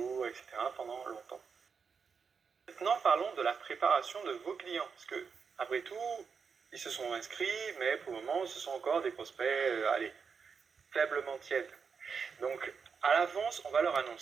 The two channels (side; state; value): left; quieter; 5.8 dB